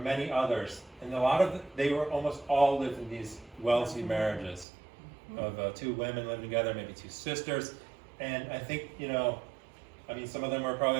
others, and they were almost all lived in these Wellesley marriages of two women living together, maybe two sisters. And I think, some of them were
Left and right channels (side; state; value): left; drops out; at 4.7 s